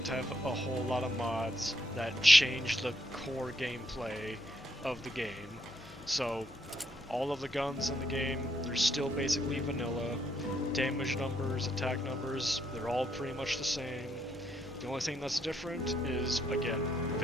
have a whole lot of mods that change the core gameplay of the game. So all of the guns in the game, they're still basically vanilla. Damage numbers, attack numbers, they're all pretty much the same. The only thing that's different is, again,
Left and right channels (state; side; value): noise; left; hum, 19 dB below the sound